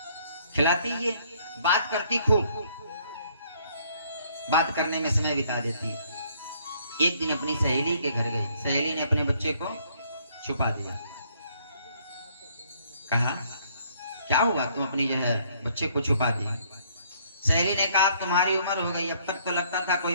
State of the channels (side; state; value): both; inverted; correlation -0.64